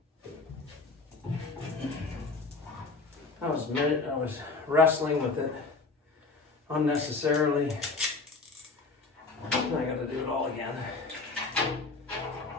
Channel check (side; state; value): right; quieter; 4.0 dB